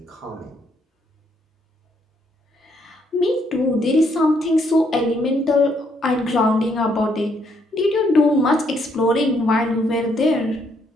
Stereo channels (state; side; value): normal; both; correlation 0.72